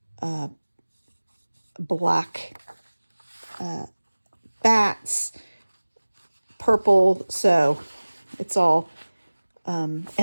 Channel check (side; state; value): both; inverted; correlation -1.00